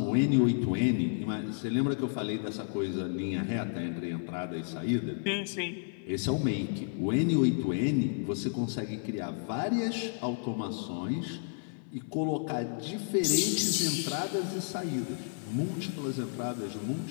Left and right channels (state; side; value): silent; right; 57 dB below the other